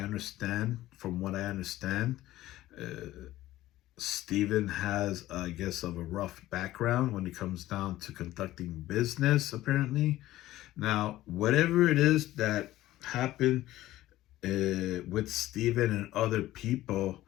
from what I understand, Stephen has, I guess, of a rough background when it comes down to conducting business, apparently. Now, whatever it is that happened with Stephen and other people,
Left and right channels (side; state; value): right; quieter; 15.5 dB